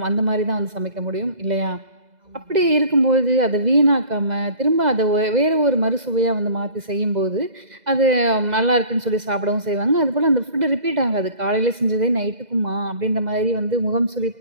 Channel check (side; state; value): left; late; 2.0 ms